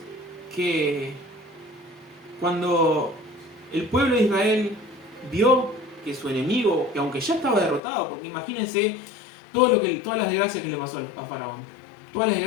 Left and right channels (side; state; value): right; drops out; at 7.8 s